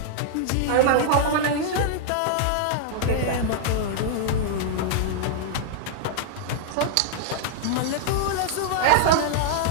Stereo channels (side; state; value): both; different; correlation -0.01